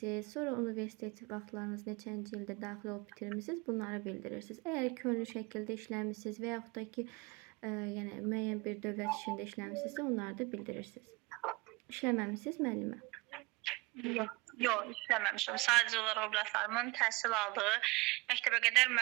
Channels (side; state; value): left; quieter; 24.6 dB